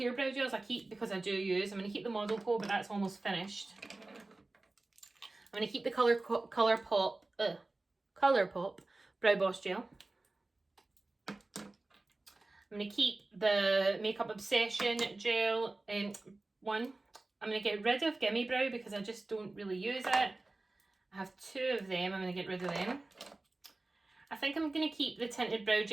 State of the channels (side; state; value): left; quieter; 3.1 dB